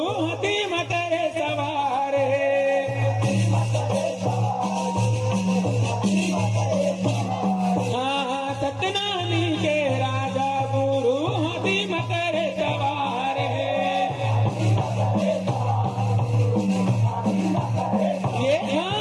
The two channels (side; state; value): both; identical; correlation 1.00